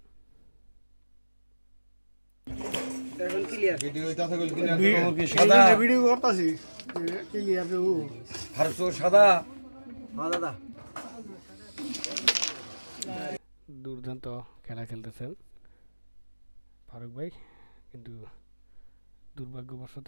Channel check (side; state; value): both; inverted; correlation -1.00